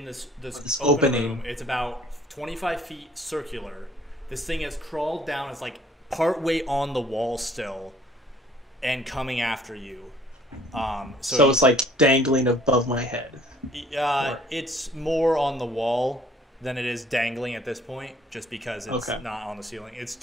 this This open opening. room. It's about 25 feet circular. This thing has crawled down. It's like partway on the wall still, and coming after you. So it's like dangling above my head. It's more on the wall than it is dangling at this point, just because it's not on the ceiling. It's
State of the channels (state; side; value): normal; both; correlation 0.57